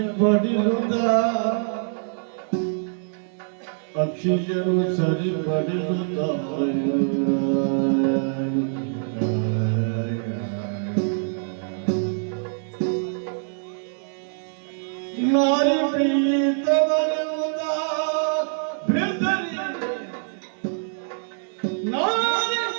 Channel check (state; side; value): silent; left; digital silence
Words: ಅಕ್ಷಿಯರು ಸರಿಪಡಿರುತ್ತ ನಾರಿ ಪ್ರೀತವನಿರುತ್ತ ಬೆದರಿ ನಾರಿ